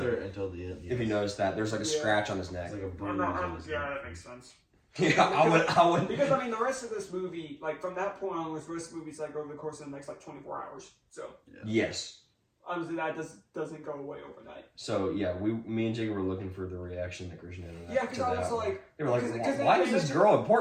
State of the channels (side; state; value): both; identical; correlation 1.00